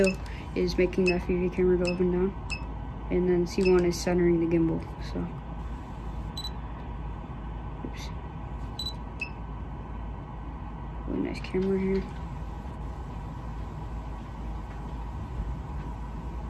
is making the FPV camera go up and down, and then C1 is centering the gimbal. So, oops. Really nice camera here.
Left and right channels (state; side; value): identical; both; correlation 1.00